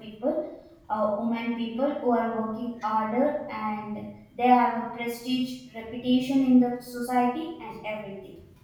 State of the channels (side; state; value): both; identical; correlation 1.00